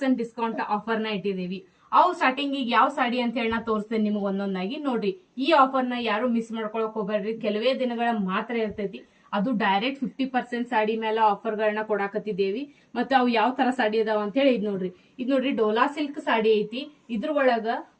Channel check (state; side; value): identical; both; correlation 1.00